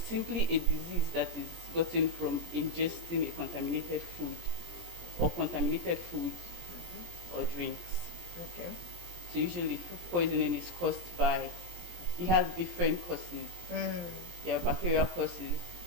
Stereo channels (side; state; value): left; late; 17 ms